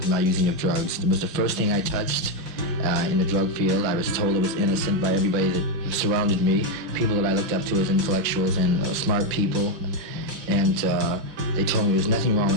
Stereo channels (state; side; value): late; left; 5.6 ms